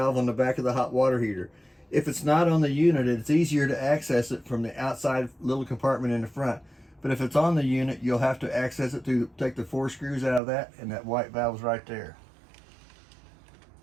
on the back of the hot water heater. If it's not on the unit, it's easier to access it from the outside little compartment in the front. But if it's on the unit, you'll have to access it to take the 4 screws out of that, and that white valve's right there.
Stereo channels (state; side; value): drops out; left; at 10.4 s